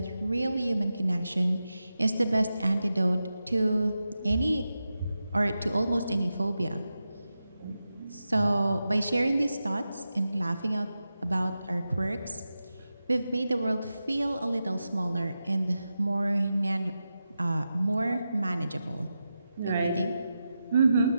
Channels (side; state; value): both; inverted; correlation -0.90